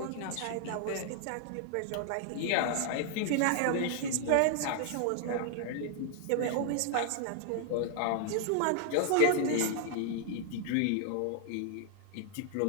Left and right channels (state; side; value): different; both; correlation 0.00